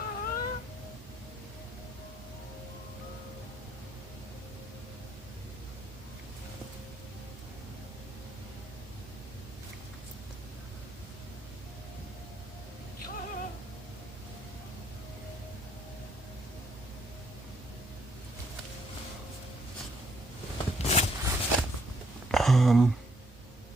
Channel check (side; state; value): both; normal; correlation 0.71